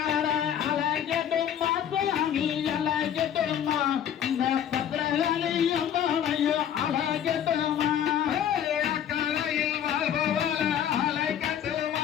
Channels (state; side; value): quieter; right; 9.6 dB